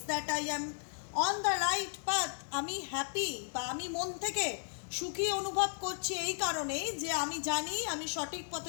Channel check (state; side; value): silent; right; digital silence